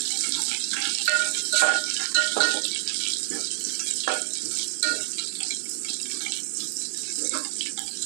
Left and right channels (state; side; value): silent; left; digital silence